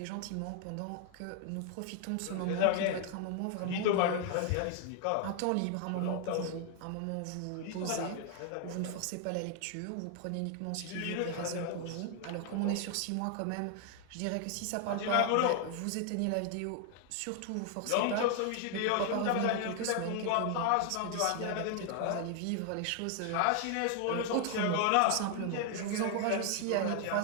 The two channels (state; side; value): different; both; correlation 0.00